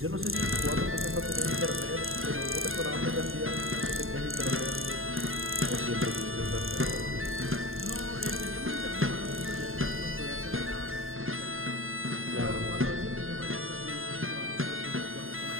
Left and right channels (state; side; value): late; left; 0.61 ms